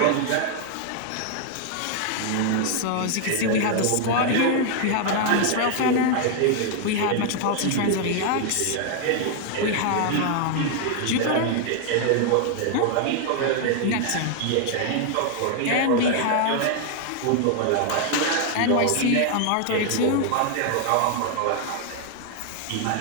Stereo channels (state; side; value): different; both; correlation 0.00